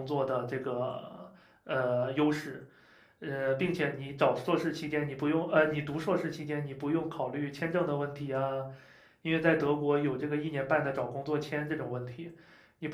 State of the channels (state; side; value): identical; both; correlation 1.00